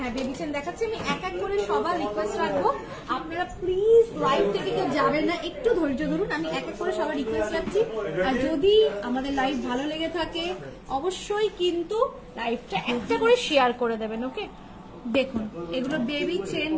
বেবি চেন দেখাচ্ছি। আমি এক এক করে সবার রিকোয়েস্ট রাখবো, আপনারা প্লিজ লাইভ থেকে কেউ যাবেন না, একটু ধৈর্য ধরুন। আমি এক এক করে সবার রিকোয়েস্ট রাখছি। আর যদি আমাদের লাইভ ভালো লেগে থাকে অবশ্যই কিন্তু লাইভটা একটা করে শেয়ার করে দেবেন। ওকে, দেখুন এগুলো বেবি চেন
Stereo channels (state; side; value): identical; both; correlation 1.00